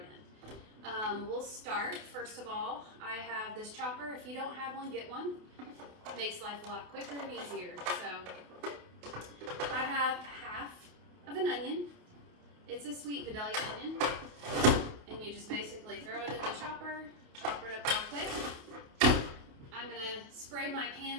in. We'll start, first of all, I have this chopper. If you don't have one, get one. It makes life a lot quicker and easier. So I have half of an onion. It's a sweet vidalia onion. And you just basically throw it in the chopper, chop it up real quick. I'm going to spray my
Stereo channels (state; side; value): late; left; 28 ms